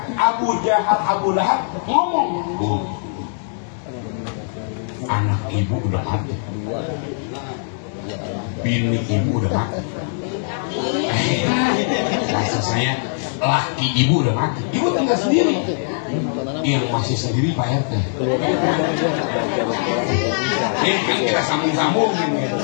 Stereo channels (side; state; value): right; silent; digital silence